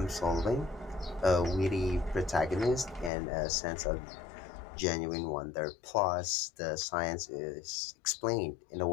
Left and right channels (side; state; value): right; drops out; at 3.1 s